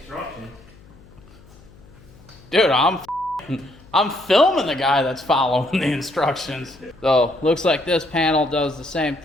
Dude, I'm filming the guy that's following the instructions. So, looks like this panel does the same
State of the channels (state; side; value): noise; left; hum, 24 dB below the sound